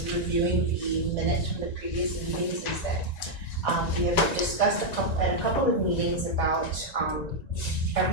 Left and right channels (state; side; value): late; right; 1.9 ms